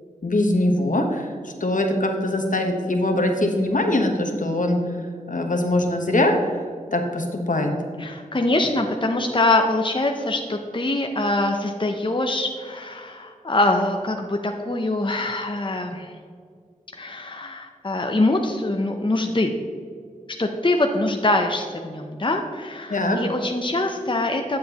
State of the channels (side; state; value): both; normal; correlation 0.56